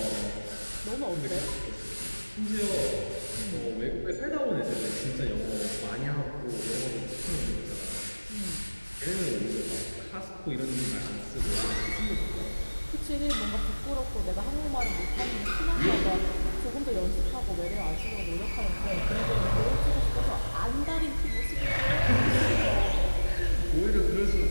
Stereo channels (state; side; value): inverted; both; correlation -1.00